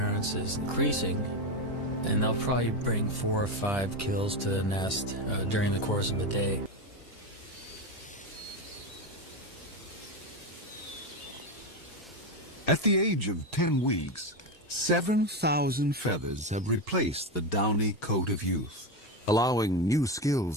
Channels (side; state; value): both; normal; correlation 0.14